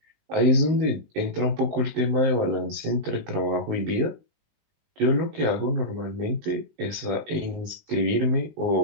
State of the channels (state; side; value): late; left; 19 ms